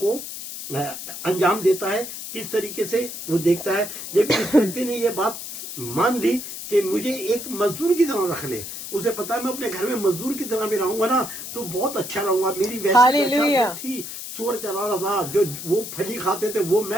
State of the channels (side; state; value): left; noise; hiss, 9 dB below the sound